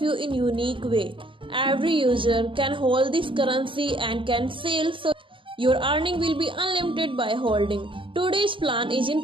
you in unique way. Every user can hold this currency and can sell, so your earning will be unlimited by holding. Today's plan is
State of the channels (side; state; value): left; late; 0.25 ms